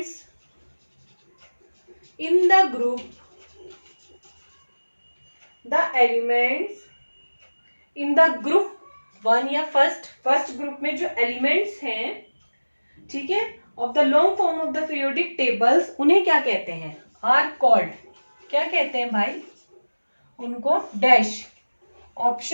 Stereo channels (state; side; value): inverted; both; correlation -1.00